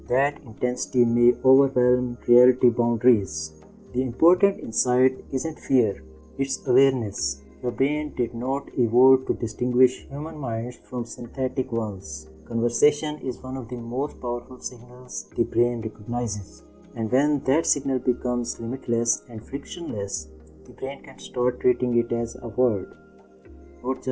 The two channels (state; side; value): identical; both; correlation 1.00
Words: that intensity may overwhelm reality boundaries. The important insight isn't fear, it's awareness. Your brain did not evolve to distinguish human minds from synthetic ones. Conversation is one of the most powerful signals the brain recognizes. And when that signal becomes limitless and frictionless, the brain can start treating it as a word, not